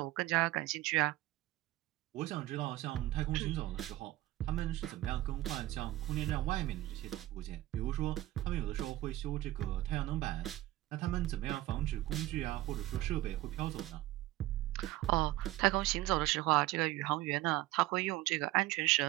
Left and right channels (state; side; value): quieter; left; 16.5 dB